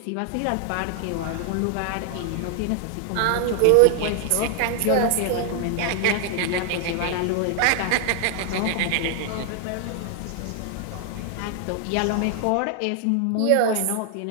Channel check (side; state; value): both; different; correlation 0.00